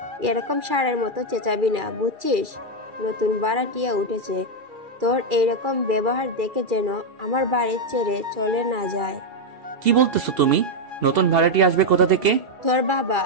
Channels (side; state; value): left; late; 2.4 ms